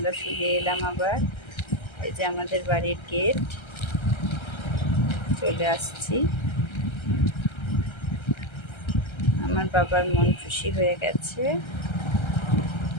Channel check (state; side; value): late; right; 1.3 ms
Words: ফিরে এলাম আবার। এই যে আমাদের বাড়ির গেট, চলে আসছি। আমার বাবার মন খুশি হয়ে গেছে।